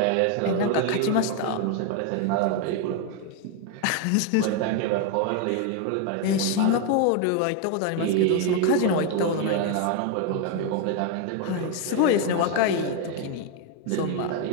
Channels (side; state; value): both; different; correlation 0.01